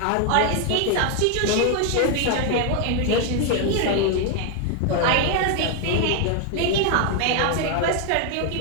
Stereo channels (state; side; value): different; both; correlation 0.01